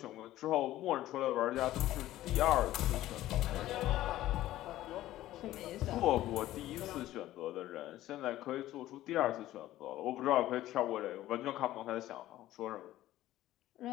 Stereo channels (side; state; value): right; quieter; 14.7 dB